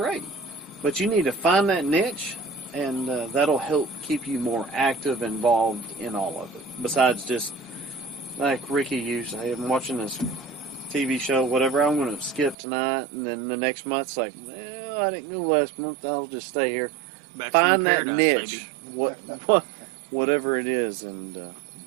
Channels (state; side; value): drops out; left; at 12.6 s